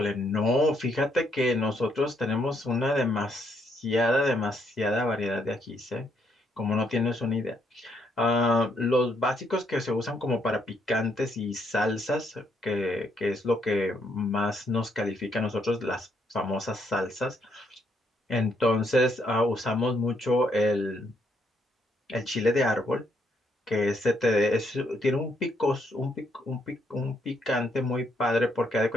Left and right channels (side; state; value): both; normal; correlation 0.73